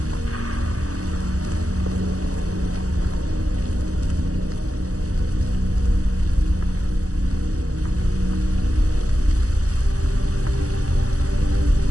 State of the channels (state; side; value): late; left; 0.66 ms